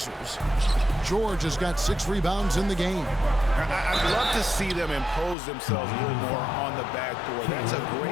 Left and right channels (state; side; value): drops out; right; at 5.4 s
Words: George has got 6 rebounds in the game. I'd love to see them impose themselves a little more on the backboard. That's a